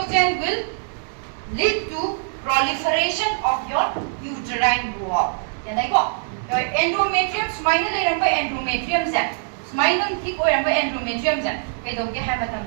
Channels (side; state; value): left; silent; digital silence